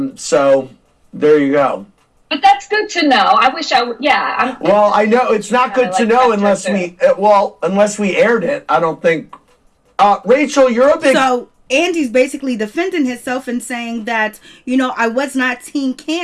so there you go. But that's good to know. I wish I would. Yeah. Well, I know it's not good to know unless we aired it. I don't think. Rachel, you're a big. So Andy's basically defending himself and saying that, I was not Team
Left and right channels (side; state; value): both; identical; correlation 1.00